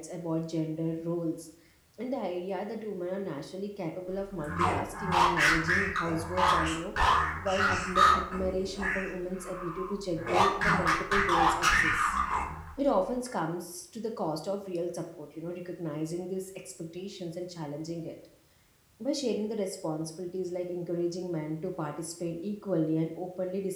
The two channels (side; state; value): both; identical; correlation 1.00